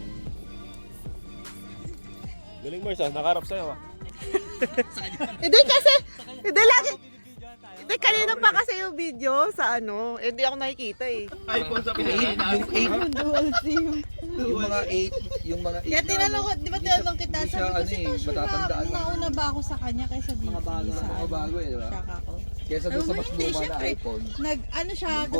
Galing Mars nakaharap sa'yo Hindi kasi, hindi lagi Ate, kanina pa kasi yung video sa ano. Eh, di ako nakikita eh. iPhone sa Pilipinas. Yung mga 8, yung mga 8 Kaya tinanong ko, di ba tinanong kita, Hindi siya, sabi ko ano si eh, Tasha matatandaan na lang. nauna ba ako sa kanya kaysa di Mga bago, sa mga bago eh, di ba? Shaka ko. Kesa doon sa mas Hindi, luma na syempre, iPhone. Ano siya, tapos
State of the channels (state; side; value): inverted; both; correlation -1.00